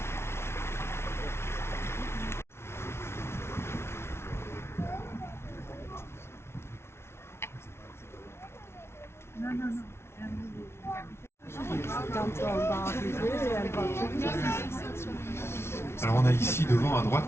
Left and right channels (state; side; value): late; right; 0.12 ms